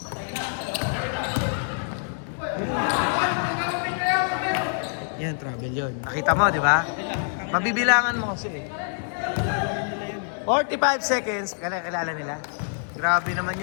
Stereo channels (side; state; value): right; silent; digital silence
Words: Yan, travel yun. Nakita mo, di ba? Mabibilangan mo kasi eh. 45 seconds. Kilala nila. Grabe naman